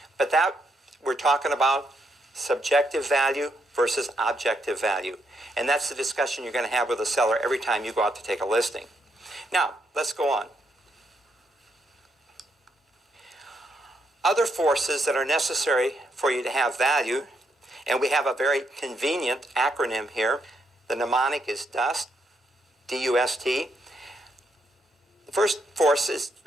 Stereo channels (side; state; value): both; normal; correlation 0.77